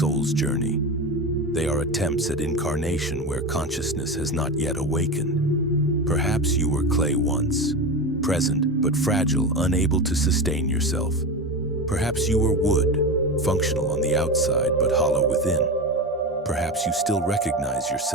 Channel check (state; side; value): normal; both; correlation 0.22